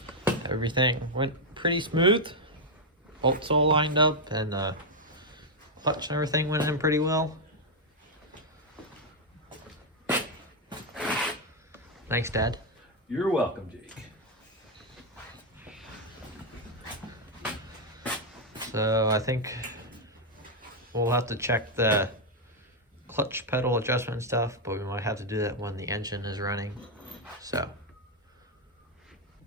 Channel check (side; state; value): both; normal; correlation 0.01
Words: Everything went pretty smooth. Bolts all lined up, and clutch and everything went in pretty well. Thanks, Dad. You're welcome, Jake. So I think we'll have to check the clutch pedal adjustment and stuff, but we might have to do that when the engine is running. So.